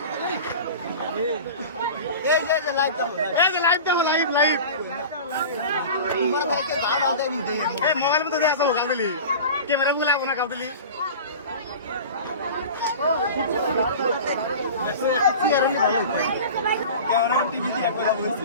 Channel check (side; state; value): both; inverted; correlation -0.35